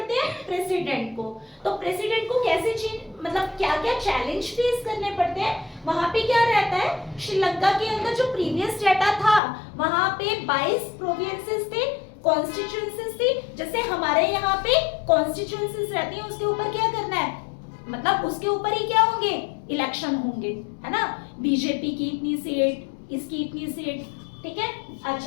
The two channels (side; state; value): right; drops out; at 9.4 s